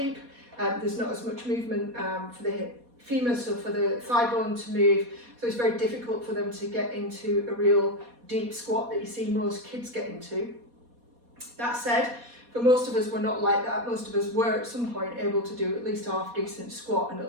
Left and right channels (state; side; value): late; left; 4.2 ms